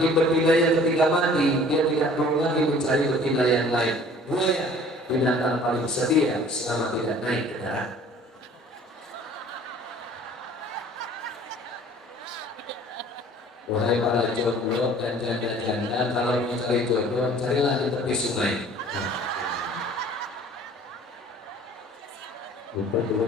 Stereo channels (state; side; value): normal; both; correlation 0.51